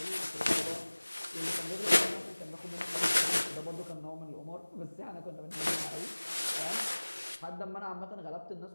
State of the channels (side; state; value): both; inverted; correlation -1.00